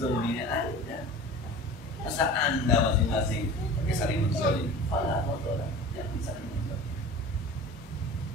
Anda. Masa Anda masing-masing pakai saling menzalim? Fala tadhalamu, jangan saling menzalim.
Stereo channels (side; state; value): both; normal; correlation 0.38